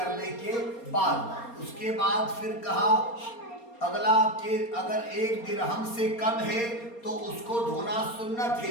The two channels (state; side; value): late; right; 4.3 ms